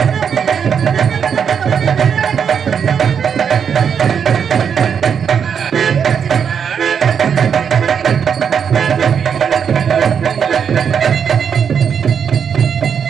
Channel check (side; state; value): left; quieter; 7.3 dB